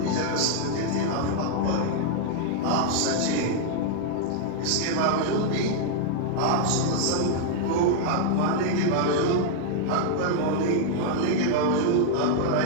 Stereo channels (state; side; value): different; both; correlation -0.01